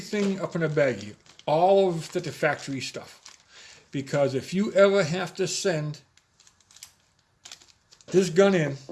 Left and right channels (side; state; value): both; identical; correlation 1.00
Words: up in a baggie, all of the factory stuff, because if you ever have to send this gun in